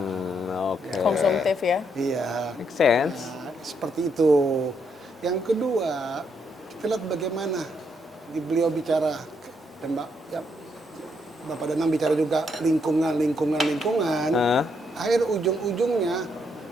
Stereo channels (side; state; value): both; normal; correlation 0.76